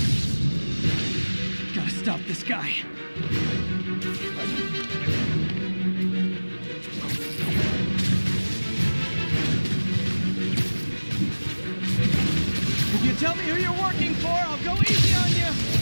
Gotta stop this guy. If you tell me who you're working for, I'll go easy on you.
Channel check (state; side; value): inverted; both; correlation -1.00